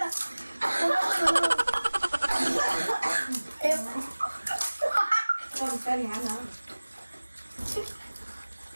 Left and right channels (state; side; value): inverted; both; correlation -1.00